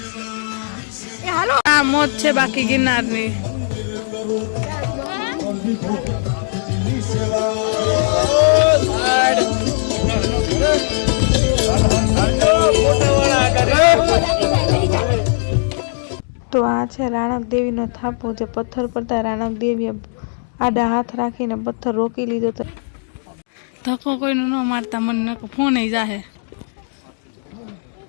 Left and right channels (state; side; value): silent; right; digital silence